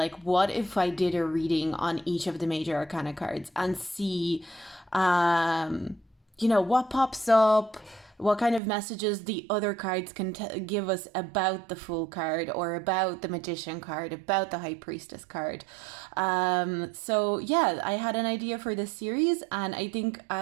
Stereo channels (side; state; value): left; drops out; at 8.6 s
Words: what if I did a reading on each of the major arcana cards and see, what pops up, what kind of messages the other cards can give us about the Fool card or about the Magician card, about the High Priestess card. So yeah, I had an idea for this series and I think